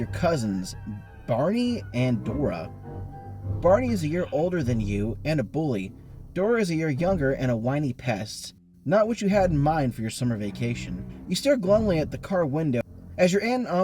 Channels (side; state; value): both; identical; correlation 1.00